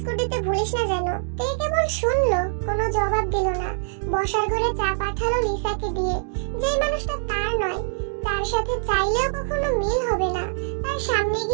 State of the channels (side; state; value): left; silent; digital silence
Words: দিতে ভুলিস না যেন। তে কেবল শুনলো, কোনো জবাব দিল না। বসার ঘরে চা পাঠালো লিসাকে দিয়ে। যেই মানুষটা তার নয়, তার সাথে চাইলেও কখনো মিল হবে না, তার সামনে